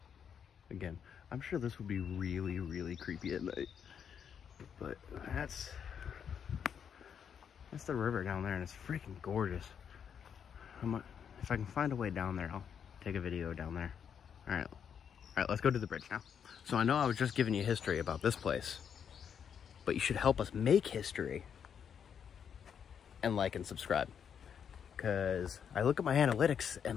Again, I'm sure this would be really, really creepy at night. But that's the river down there, and it's freaking gorgeous. If I can find a way down there, I'll take a video down there. All right, let's go to the bridge now. So I know I was just giving you history about this place, but you should help us make history and like and subscribe. Because I look at my analytics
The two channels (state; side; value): quieter; right; 7.7 dB